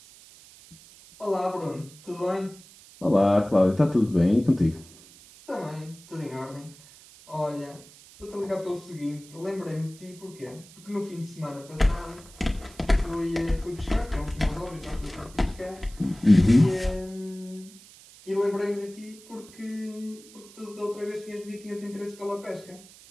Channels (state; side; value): noise; right; hiss, 22 dB below the sound